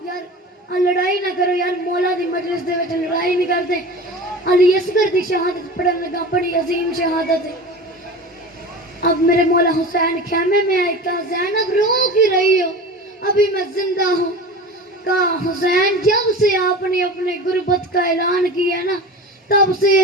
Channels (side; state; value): both; normal; correlation 0.33